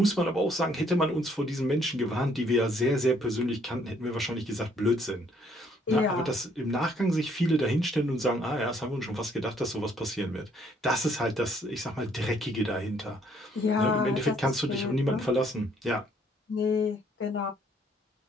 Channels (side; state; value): both; normal; correlation 0.65